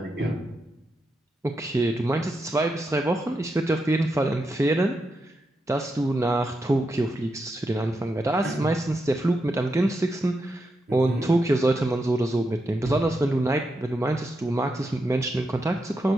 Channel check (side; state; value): both; normal; correlation 0.85